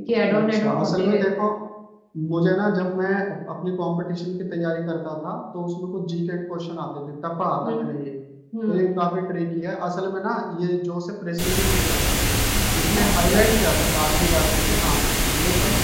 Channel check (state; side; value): identical; both; correlation 1.00